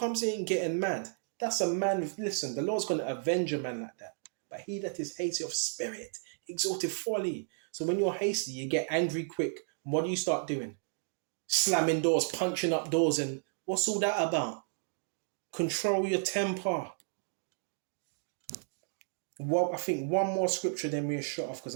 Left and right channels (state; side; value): silent; left; digital silence